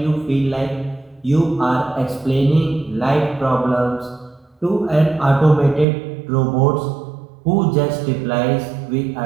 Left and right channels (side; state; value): left; drops out; at 5.9 s